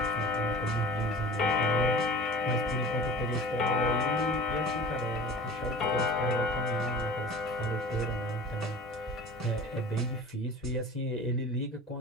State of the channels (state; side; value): normal; both; correlation 0.40